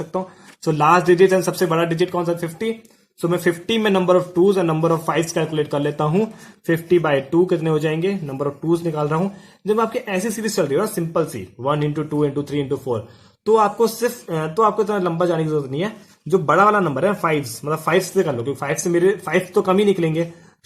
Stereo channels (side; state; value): both; identical; correlation 1.00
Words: हूं। सो लास्ट डिजिट एंड सबसे बड़ा डिजिट कौन सा, 50। सो मैं 50 में नंबर ऑफ टूज और नंबर ऑफ फाइव्स कैलकुलेट कर लेता हूं। 50/2 कितने हो जाएंगे, नंबर ऑफ टूज निकाल रहा हूं। जब आपकी ऐसी सीरीज चल रही है ना, सिंपल सी 1 इंटू 2 इंटू 3 इंटू 4, तो आपको इतना लंबा जाने की जरूरत नहीं है। जो बड़ा वाला नंबर है 5, मतलब 5 से कर लो, क्योंकि 5 से मेरे 5 तो कम ही निकलेंगे।